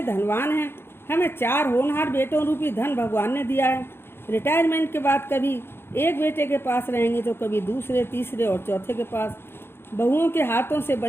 धनवान हैं। हमें 4 होनहार बेटों रूपी धन भगवान ने दिया है। रिटायरमेंट के बाद कभी एक बेटे के पास रहेंगे तो कभी दूसरे, तीसरे और चौथे के पास। बहुओं के हाथों से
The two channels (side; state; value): right; late; 0.11 ms